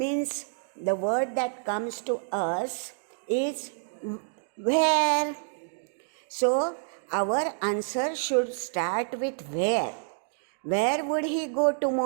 the word that comes to us is where. So our answer should start with where. Where would he go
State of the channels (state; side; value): silent; left; digital silence